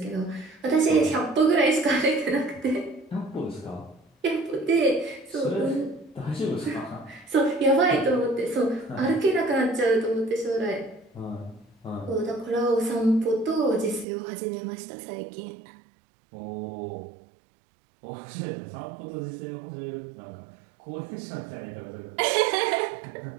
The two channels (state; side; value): drops out; left; at 14.1 s